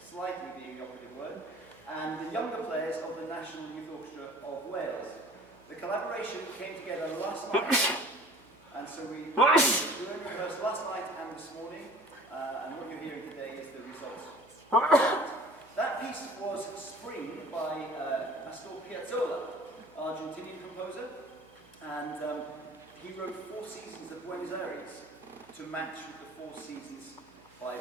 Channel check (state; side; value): noise; right; hum, 29 dB below the sound